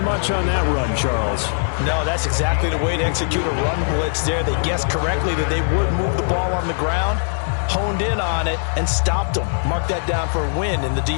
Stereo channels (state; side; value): silent; right; digital silence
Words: much on that run, Charles. No, that's exactly the way to execute a run blitz there. They guessed correctly that they would move the ball on the ground, honed in on it, and stopped them. Mark that down for a win in the